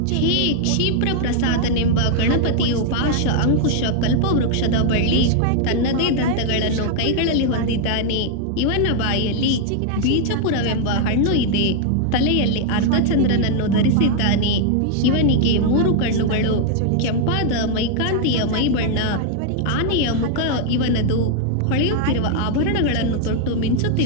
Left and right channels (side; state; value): both; different; correlation 0.00